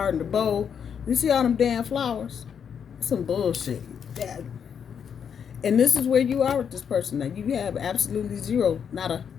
and the bow. You see all them damn flowers? Some bullshit. That. And this is where you are with this person. Now, you have absolutely zero, not a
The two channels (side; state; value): right; quieter; 7.5 dB